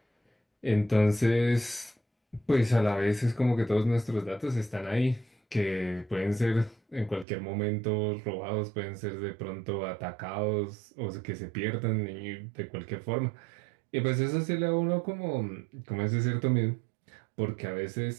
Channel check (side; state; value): left; drops out; at 7.2 s